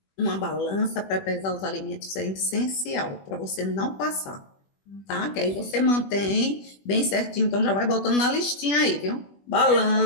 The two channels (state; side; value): late; right; 21 ms